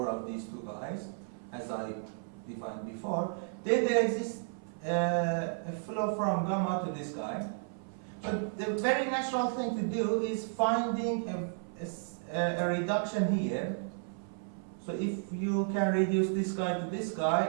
of these two guys, as I defined before, then there exists a flow from gamma to this guy. But the very natural thing to do is finding a reduction here. So if you can reduce this guy to this guy,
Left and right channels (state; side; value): silent; left; 56 dB below the other